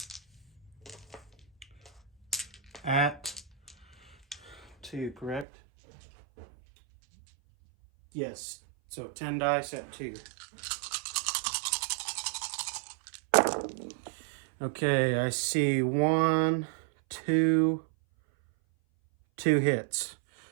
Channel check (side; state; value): left; drops out; at 5.5 s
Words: at 2, correct? Yes, so 10 dice at 2. Okay, I see 1, 2 hits.